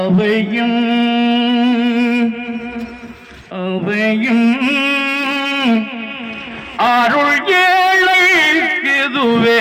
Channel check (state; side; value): identical; both; correlation 1.00